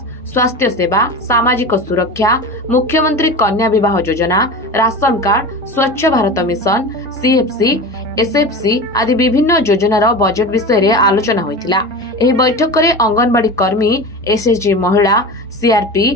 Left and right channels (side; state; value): both; normal; correlation 0.29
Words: स्वास्थ्य सेवा, सामाजिक सुरक्षा, मुख्यमंत्री कन्या विवाह योजना, राशन कार्ड, स्वच्छ भारत मिशन, सीएफसी, एसएफसी आदि विभिन्न योजनार बजेट विषय रे आलोचना होइतिला। एही बैठक में अंगनवाड़ी कर्मी, एसएचजी महिला, सीआरपी,